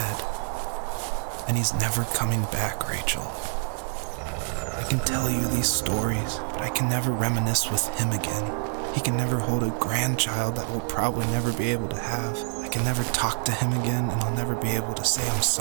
and he's never coming back, Rachel. I can tell you these stories, but I can never reminisce with him again. He can never hold a grandchild that we'll probably never be able to have. I can never talk to him again, and I'll never be able to say I'm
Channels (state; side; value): silent; left; digital silence